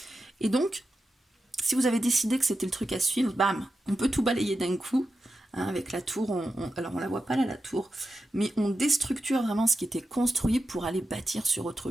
Et donc, si vous avez décidé que c'était le truc à suivre, bam, on peut tout balayer d'un coup. Hein, avec la tour, alors on la voit pas là la tour, mais on déstructure vraiment ce qui était construit pour aller bâtir sur autre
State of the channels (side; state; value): both; normal; correlation 0.90